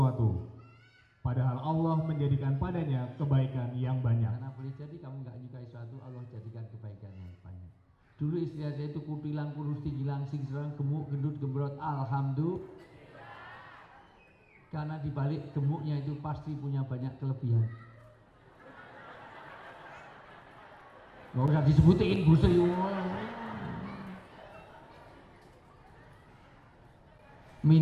padahal Allah menjadikan padanya kebaikan yang banyak. Karena boleh jadi kamu nggak nyukai sesuatu, Allah jadikan kebaikan yang banyak. Dulu istri saya itu kutilang, kurus, tinggi, langsing, serang, gemuk, gendut, gembrot. Alhamdulillah. Karena dibalik gemuknya itu pasti punya banyak kelebihan. Nggak usah disebutin, buset.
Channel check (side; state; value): both; identical; correlation 1.00